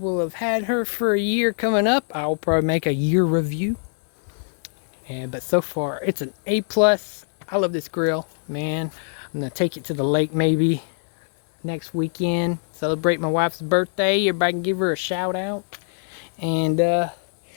will have had her for a year coming up. I'll probably make a year review, but so far it's an A+. I love this grill, man. I'm gonna take it to the lake maybe next weekend, celebrate my wife's birthday. Everybody can give her a shout out, and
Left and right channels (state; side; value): silent; right; 63 dB below the other